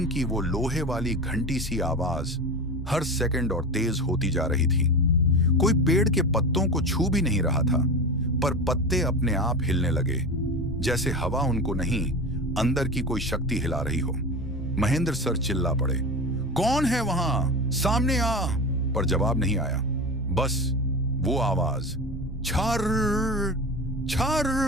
की वो लोहे वाली घंटी सी आवाज हर सेकंड और तेज होती जा रही थी। कोई पेड़ के पत्तों को छू भी नहीं रहा था, पर पत्ते अपने आप हिलने लगे, जैसे हवा उनको नहीं, अंदर की कोई शक्ति हिला रही हो। महेंद्र सर चिल्ला पड़े, कौन है वहां, सामने आ। पर जवाब नहीं आया, बस वो आवाज, छर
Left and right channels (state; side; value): normal; both; correlation 0.26